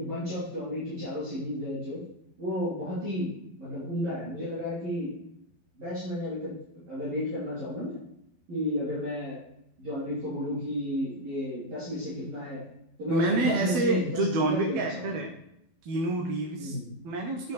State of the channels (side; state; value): left; late; 12 ms